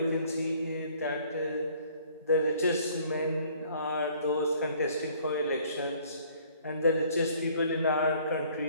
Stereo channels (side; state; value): both; inverted; correlation -0.58